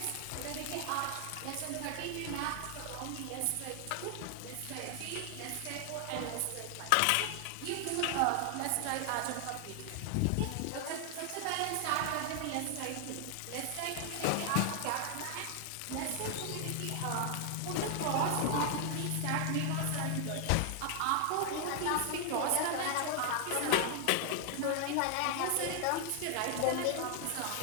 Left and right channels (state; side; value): different; both; correlation 0.00